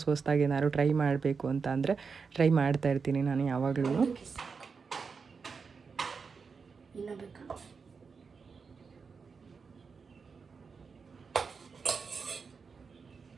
ಏನಾದ್ರು ಟ್ರೈ ಮಾಡಬೇಕು ಅಂತ ಅಂದರೆ ಟ್ರೈ ಮಾಡ್ತಾ ಇರ್ತೀನಿ ನಾನು ಯಾವಾಗಲೂ.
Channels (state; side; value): quieter; left; 5.3 dB